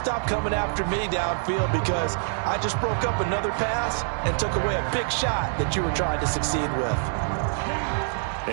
stop coming after me downfield because I just broke up another pass and took away a big shot that you were trying to succeed with.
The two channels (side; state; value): left; silent; digital silence